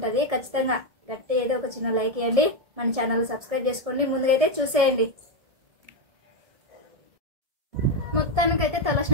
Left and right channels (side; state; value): left; late; 1.6 ms